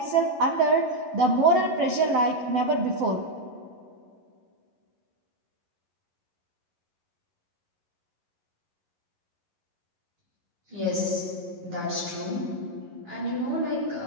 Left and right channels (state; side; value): late; left; 11 ms